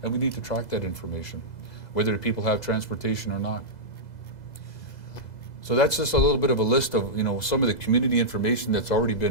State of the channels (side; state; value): right; late; 2.0 ms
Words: and we need to track that information, whether people have transportation or not. So that's just a little bit of a list of, some of the community information that's already